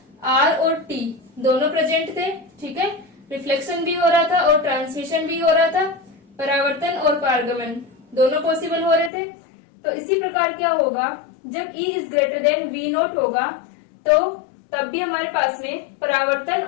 R और T दोनों प्रेजेंट थे, ठीक है, रिफ्लेक्शन भी हो रहा था और ट्रांसमिशन भी हो रहा था, परावर्तन और पारगमन दोनों पॉसिबल हो रहे थे। तो इसी प्रकार क्या होगा, जब E is greater than v naught होगा तो तब भी हमारे पास में परावर्तन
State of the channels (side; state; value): right; drops out; at 9.1 s